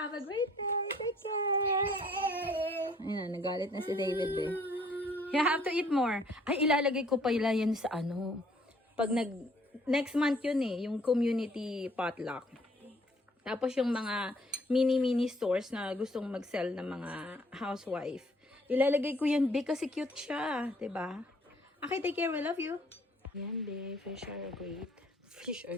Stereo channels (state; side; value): normal; both; correlation 0.61